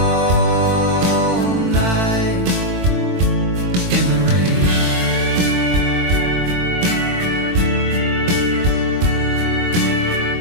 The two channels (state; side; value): late; left; 23 ms